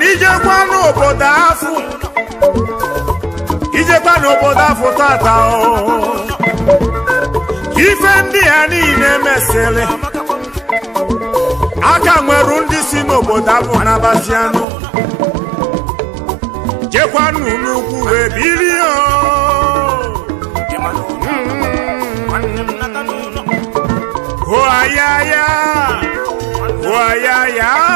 ijekwa n'obodo afọ tata ife ndị ya niile mesịrị aka nwere ndị si n'obodo abụ n'Abazianụ jekwanụ n'ugwu wee bilie hoayaya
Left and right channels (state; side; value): drops out; left; at 14.7 s